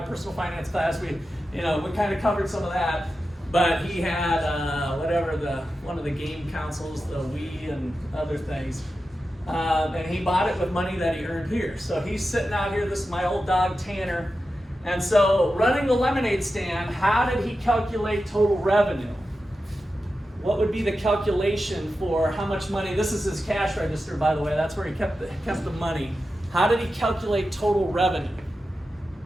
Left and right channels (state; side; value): normal; both; correlation 0.91